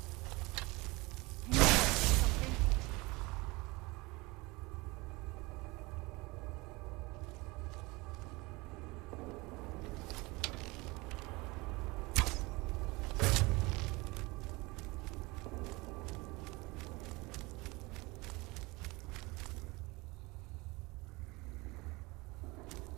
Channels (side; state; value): left; quieter; 23.8 dB